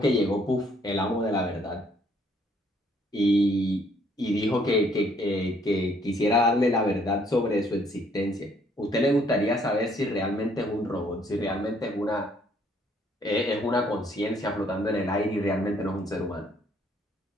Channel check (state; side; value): normal; both; correlation 0.65